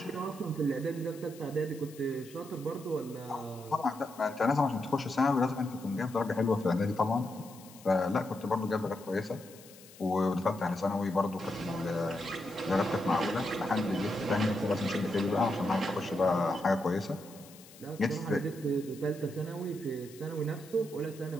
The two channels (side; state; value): left; noise; hiss, 21 dB below the sound